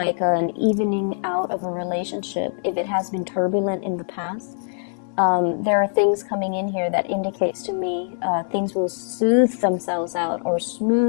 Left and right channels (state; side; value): silent; right; 63 dB below the other